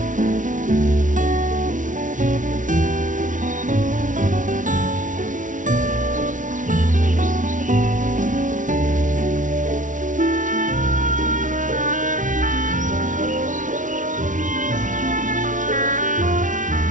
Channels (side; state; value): left; late; 0.37 ms